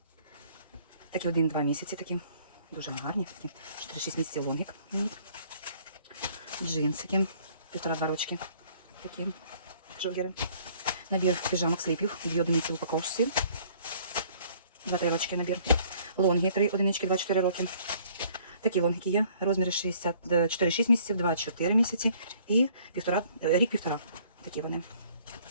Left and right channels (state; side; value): inverted; both; correlation -0.58